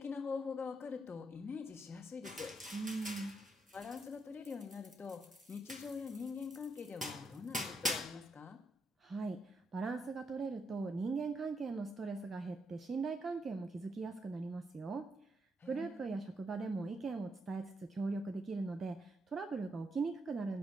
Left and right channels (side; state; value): both; normal; correlation 0.80